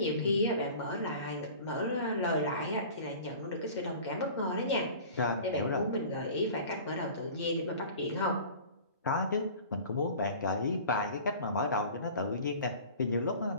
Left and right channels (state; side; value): inverted; both; correlation -0.42